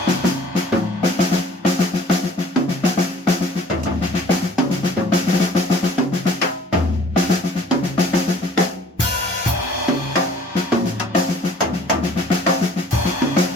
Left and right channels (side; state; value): both; normal; correlation 0.52